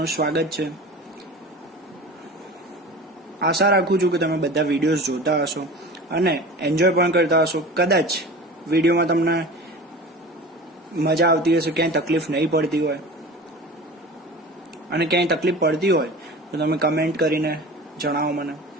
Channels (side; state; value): both; normal; correlation 0.36